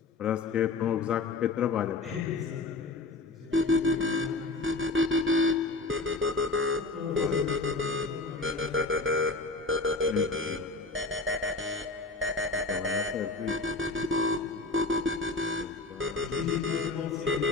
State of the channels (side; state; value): right; quieter; 3.5 dB